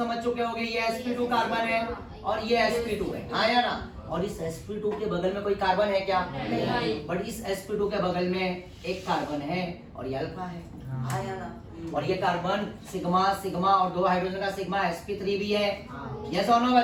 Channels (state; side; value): identical; both; correlation 1.00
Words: चुके होगे ये sp2 कार्बन है और ये sp2 है, आया ना? और इस sp2 के बगल में कोई कार्बन है क्या? नहीं। बट इस sp2 के बगल में एक कार्बन है और ये अल्फा है, आया ना? और ये कार्बन सिग्मा सिग्मा और 2 हाइड्रोजन का सिग्मा sp3 भी है, यस और नो